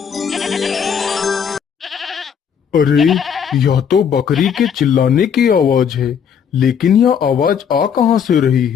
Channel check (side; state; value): right; quieter; 7.5 dB